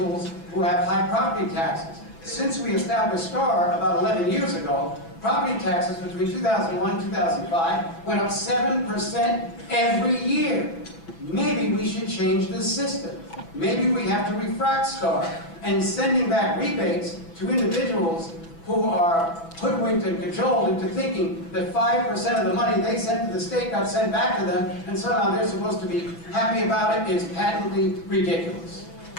who have high property taxes. Since we established STAR about 11 years ago, property taxes between 2001 and 2005 went up 7% every year. Maybe we should change the system. Maybe we have to refract STAR and sending back rebates to individuals who are hoodwinked and cajoled into thinking that 5% of the money they sent to the state got sent back to them, and somehow they're supposed to be happy about it, is patently ridiculous.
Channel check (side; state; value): right; late; 6.1 ms